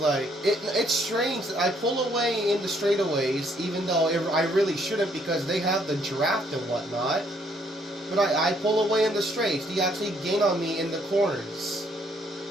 it's strange. I pull away in the straightaways, even though I really shouldn't because they have the draft and whatnot. But I pull away in the straights. They actually gain on me in the corners.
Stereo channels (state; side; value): normal; both; correlation 0.68